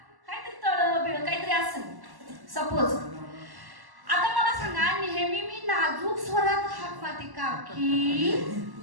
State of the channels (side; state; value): left; late; 1.1 ms